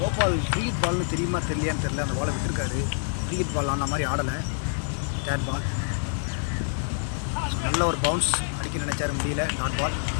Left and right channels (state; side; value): silent; right; 60 dB below the other